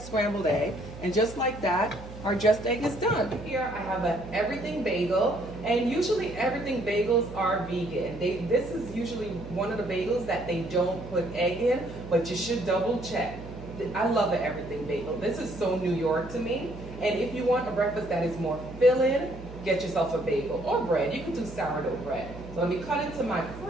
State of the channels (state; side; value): noise; right; hum, 14 dB below the sound